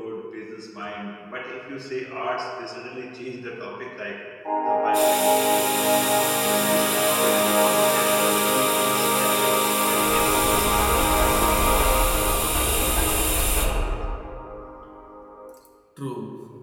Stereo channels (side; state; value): both; identical; correlation 1.00